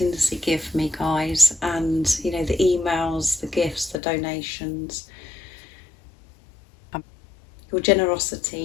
give me, guys, and you know, the emails, the gifts, the donations, your generosity,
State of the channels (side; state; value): right; drops out; at 4.0 s